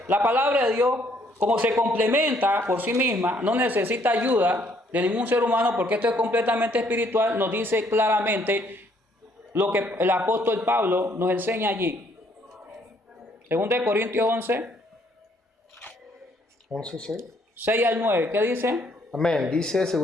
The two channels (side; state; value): both; normal; correlation 0.67